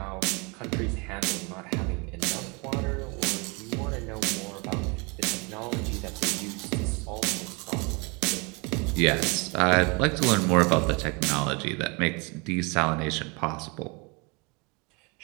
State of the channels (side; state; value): left; quieter; 29.8 dB